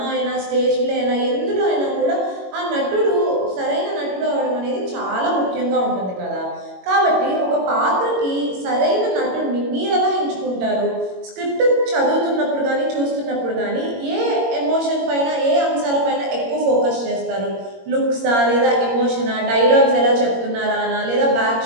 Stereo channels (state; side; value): late; left; 21 ms